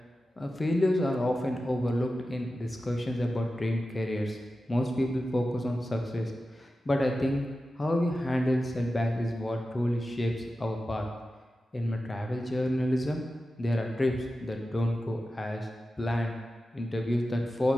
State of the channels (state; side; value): normal; both; correlation 0.93